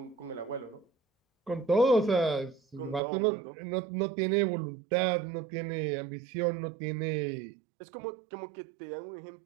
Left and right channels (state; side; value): drops out; left; at 3.0 s